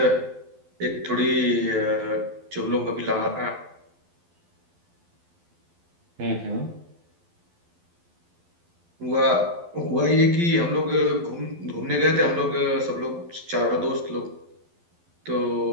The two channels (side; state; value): left; late; 12 ms